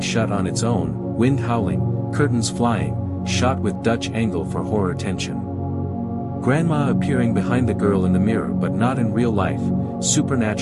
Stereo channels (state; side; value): identical; both; correlation 1.00